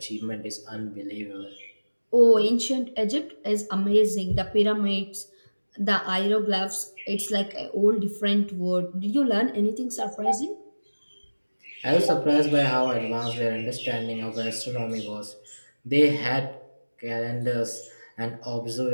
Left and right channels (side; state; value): both; inverted; correlation -1.00